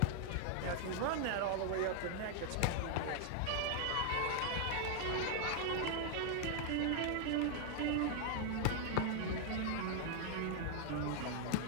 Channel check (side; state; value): both; different; correlation 0.00